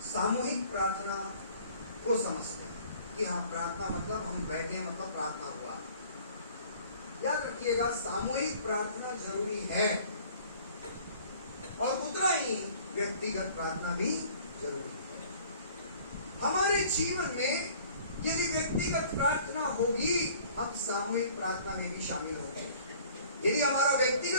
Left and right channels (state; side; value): inverted; both; correlation -0.51